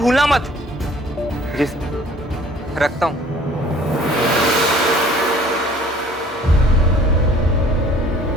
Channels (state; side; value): normal; both; correlation 0.53